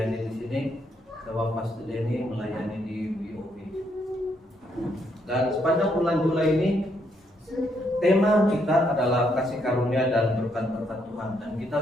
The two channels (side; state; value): both; normal; correlation 0.74